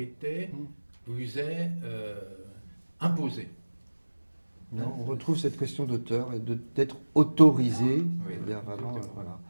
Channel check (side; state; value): both; inverted; correlation -1.00